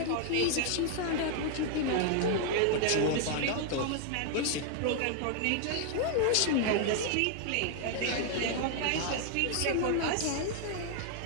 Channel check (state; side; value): different; both; correlation 0.00